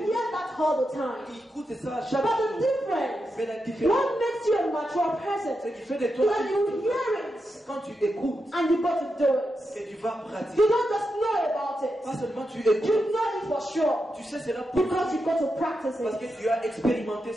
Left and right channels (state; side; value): normal; both; correlation 0.87